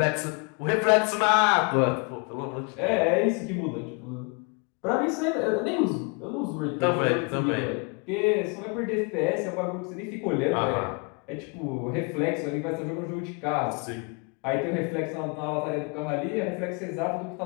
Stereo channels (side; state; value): right; quieter; 33.9 dB